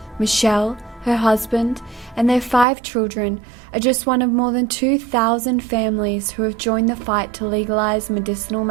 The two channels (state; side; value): drops out; left; at 2.7 s